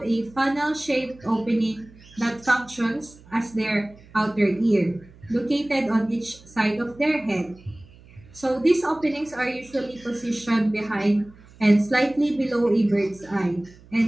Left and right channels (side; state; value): right; noise; hum, 24 dB below the sound